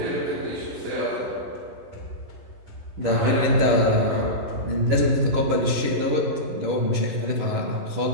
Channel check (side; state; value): left; late; 11 ms